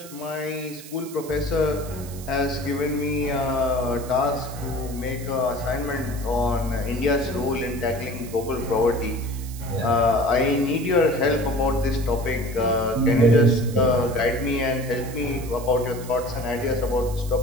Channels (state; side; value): noise; right; hiss, 16 dB below the sound